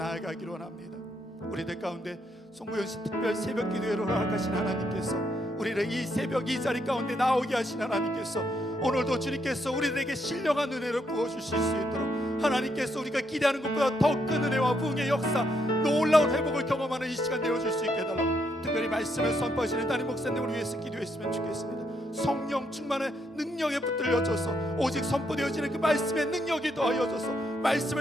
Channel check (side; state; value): both; normal; correlation 0.76